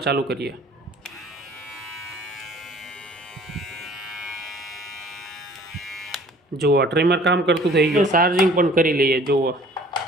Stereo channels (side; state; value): both; normal; correlation 0.52